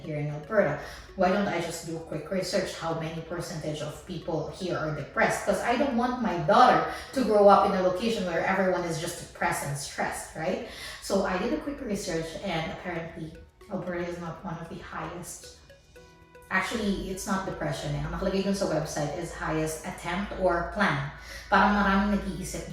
here in Alberta. Why don't I just do a quick research how many percentage of people here are depressed? Because I don't want my daughter to grow up in a location where everyone is just depressed and stressed, right? So I did a quick research and apparently Alberta is not one of the highest. Actually, it's not depression Ang nakalagay dun sa website is highest attempt or plan. Parang maraming nag-iisip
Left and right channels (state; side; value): identical; both; correlation 1.00